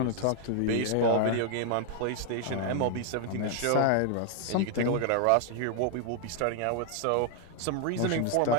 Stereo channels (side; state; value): both; different; correlation 0.00